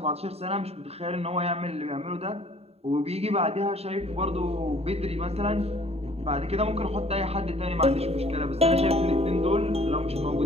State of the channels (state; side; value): late; left; 0.30 ms